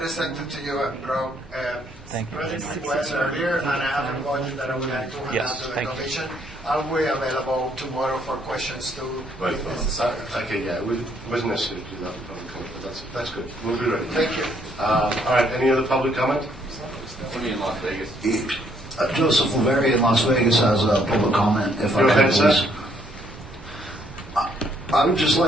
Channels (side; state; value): both; normal; correlation 0.68